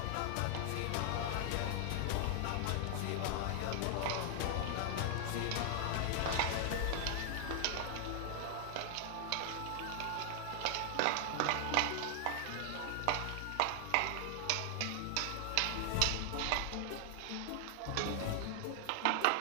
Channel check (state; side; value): different; both; correlation 0.00